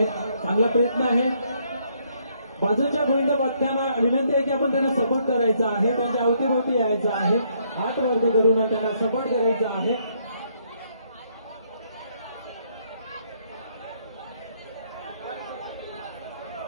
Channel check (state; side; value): inverted; both; correlation -0.70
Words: चांगला प्रयत्न आहे. बाजूच्या गोविंद पथकांना विनंती आहे की आपण त्यांना सपोर्ट करायचा आहे. त्यांच्या अवतीभोवती यायचं आहे. हात वरती करून त्यांना सपोर्ट करायचा आहे.